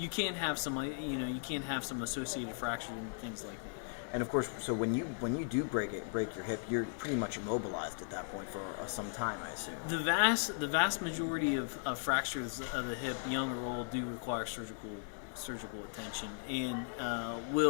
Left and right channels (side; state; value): right; silent; digital silence